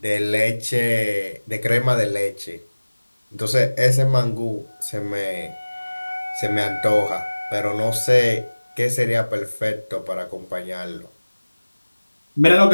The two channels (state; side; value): inverted; both; correlation -1.00